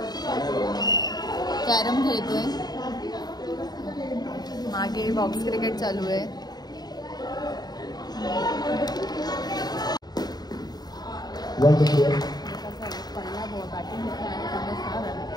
खेळतोय. मागे बॉक्स क्रिकेट चालू आहे.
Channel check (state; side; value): late; right; 0.19 ms